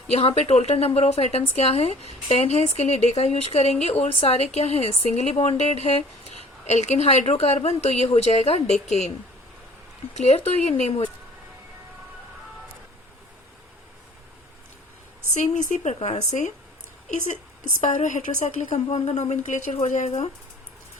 यहाँ पे टोटल नंबर ऑफ एटम्स क्या है, 10 है, इसके लिए डे का यूज करेंगे, और सारे क्या है, सिंगली बॉन्डेड है, एल्केन हाइड्रोकार्बन, तो ये हो जाएगा डेकेन। क्लियर, तो ये नेम हो। सेम इसी प्रकार से इस स्पायरो हेटेरोसाइक्लिक कंपाउंड का नोमेनक्लेचर हो जाएगा।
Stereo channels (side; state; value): both; normal; correlation 0.50